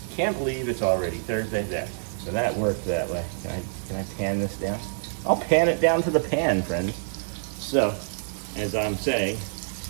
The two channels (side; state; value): left; silent; digital silence